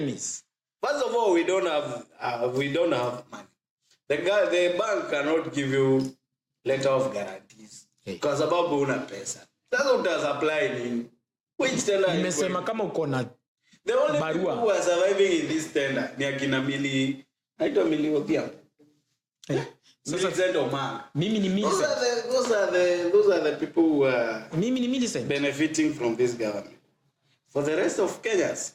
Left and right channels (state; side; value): identical; both; correlation 1.00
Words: First of all, we don't have money. The bank cannot give you letter of guarantees. Kwa sababu una pesa. Sasa utasapply nini? Which tender? Nimesema kama uko na the only barua who are surviving in this tender ni akina Mili. Haitwa Mili Odhiambo. Millicent Omanga. Mimi ni Millicent. Those are the people who are mimi ni Millicent benefiting from this government. For the rest of Kenyans.